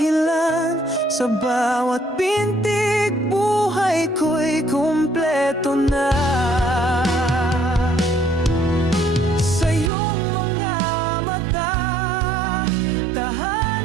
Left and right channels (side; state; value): left; drops out; at 9.9 s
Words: Sa bawat pintig buhay ko'y kumpleto na. Sa iyong mga mata